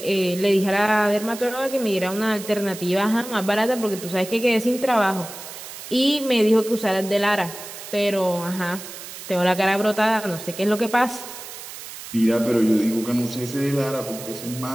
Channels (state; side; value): noise; right; hiss, 12 dB below the sound